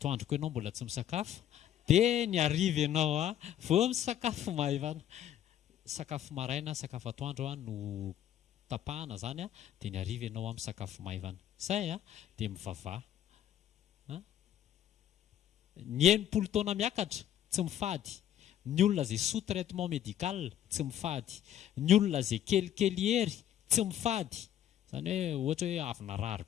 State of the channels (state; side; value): quieter; right; 11.0 dB